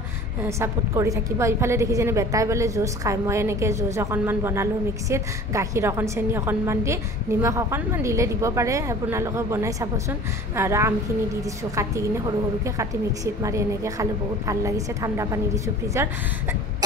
সাপোৰ্ট কৰি থাকিব ইফালে দেখিছেনে বেটাই বলে জুচ খায় মই এনেকৈ জুচ অকণমান বনালোঁ মিক্সিত গাখীৰ অকণ চেনি অকণমান দি নিমখ অকণমান দিলে দিব পাৰে আপোনালোকে বনাই চাবচোন আৰু আমখিনি দি দিছোঁ কাটি কিনে সৰু সৰুকৈ কাটি মিক্সিত মাৰি এনেকৈ খালে বহুত ভাল লাগিছে ঠাণ্ডা পানী দিছোঁ ফ্ৰিজৰ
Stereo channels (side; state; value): both; normal; correlation 0.43